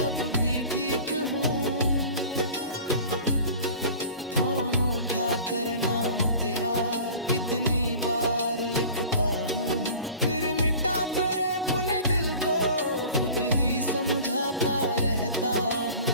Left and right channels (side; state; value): both; inverted; correlation -0.42